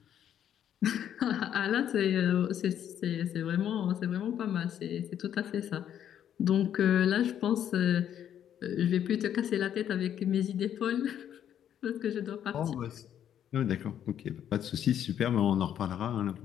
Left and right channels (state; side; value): quieter; right; 9.9 dB